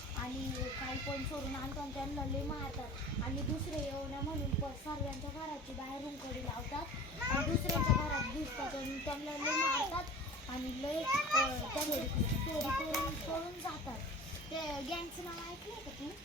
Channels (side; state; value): both; normal; correlation 0.38